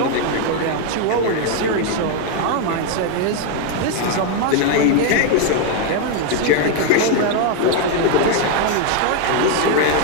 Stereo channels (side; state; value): both; different; correlation 0.01